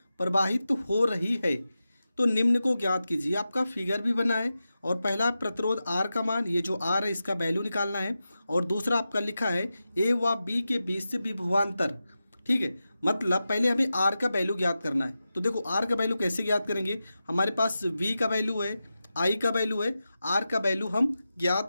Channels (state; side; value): inverted; both; correlation -0.92